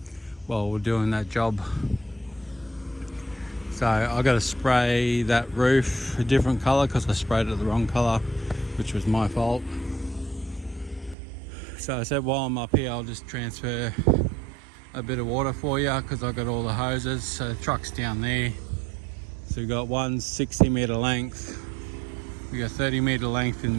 while we're doing that job. So I got to spray that roof a different colour because I sprayed it the wrong colour, which was my fault. So I said, while I'm up here, I'll just transfer a bit of water for you because I got all the hoses. So the truck's down there. So we've got one 60 metre length, we got 30 metre length in the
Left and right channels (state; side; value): drops out; left; at 11.2 s